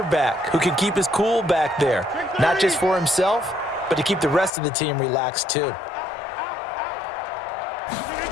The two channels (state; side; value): drops out; right; at 4.5 s